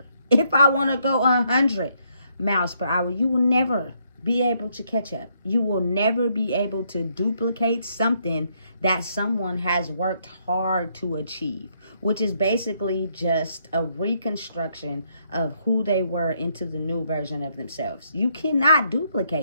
if I want to go 100 miles per hour, you will never be able to catch up. You will never be able to duplicate something that someone has worked hard to achieve, which is basically just a reconstruction of who they were into the new version of themselves. You cannot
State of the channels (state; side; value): inverted; both; correlation -0.73